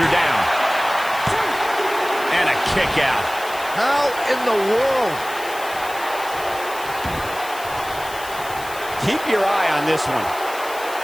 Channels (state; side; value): noise; left; hiss, 14 dB below the sound